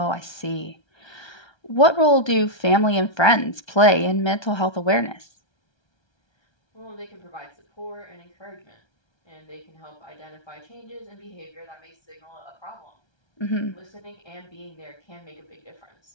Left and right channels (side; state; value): right; late; 1.3 ms